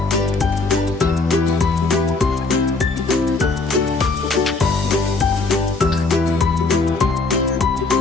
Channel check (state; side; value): quieter; right; 3.6 dB